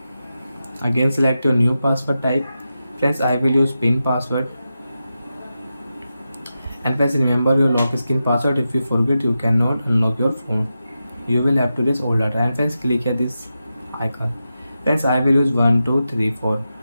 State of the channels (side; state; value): both; inverted; correlation -0.90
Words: Again select your new password type. Friends, I will use pin password. And friends, remember your lock screen password. If you forget, you cannot unlock your phone. You will have to erase all data. And friends, click here this icon. Friends, I will use 1234